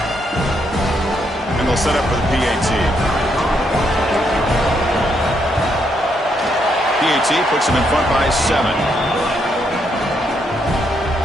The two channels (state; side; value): normal; both; correlation 0.76